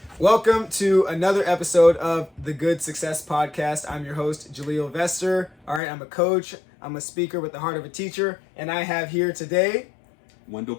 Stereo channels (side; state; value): right; drops out; at 5.8 s